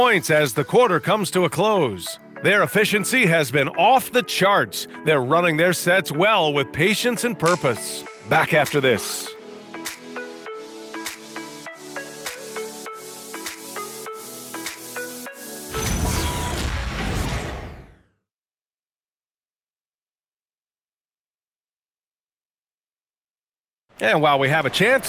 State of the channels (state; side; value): identical; both; correlation 1.00